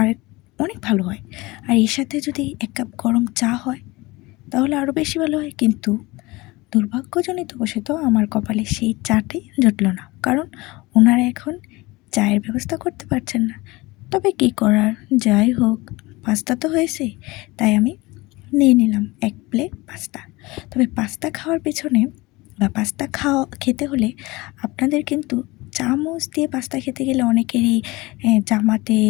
অনেক ভালো হয়। আর এর সাথে যদি এক কাপ গরম চা হয়, তাহলে আরও বেশি ভালো হয়। কিন্তু দুর্ভাগ্যজনিতবশত আমার কপালে সেই চাটাই জুটল না, কারণ ওনারা এখন চায়ের ব্যবস্থা করতে পারছেন না। তবে কী করার, যাই হোক, পাস্তা তো হয়েছে, তাই আমি নিয়ে নিলাম এক প্লেট পাস্তা। তবে পাস্তা খাওয়ার পেছনে বা পাস্তা খেতে হলে আপনাদের কিন্তু চামচ দিয়ে পাস্তা খেতে গেলে অনেকেরই জামাতে,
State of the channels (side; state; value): right; quieter; 22.1 dB